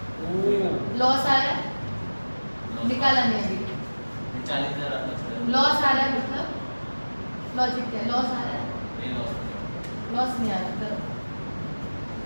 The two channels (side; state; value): both; inverted; correlation -1.00